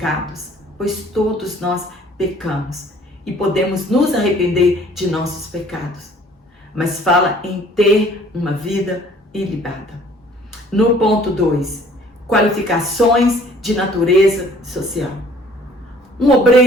pois todos nós pecamos e podemos nos arrepender de nossos pecados, mas fala em ter uma vida ilibada. No ponto 2, qualificações de natureza social. Um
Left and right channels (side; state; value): both; normal; correlation 0.55